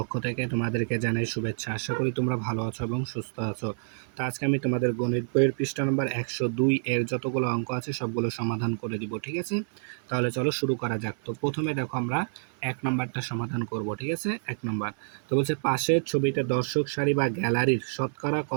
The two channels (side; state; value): left; silent; 59 dB below the other